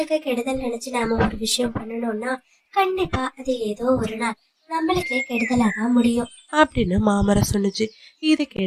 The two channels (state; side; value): identical; both; correlation 1.00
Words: கெடுதல் நினைச்சு நாம ஒரு விஷயம் பண்ணணும்னா கண்டிப்பா அது ஏதோ ஒரு நாள் நம்மளுக்கே கெடுதலாதான் முடியும் அப்படின்னு மாமரம் சொன்னுச்சு. இதை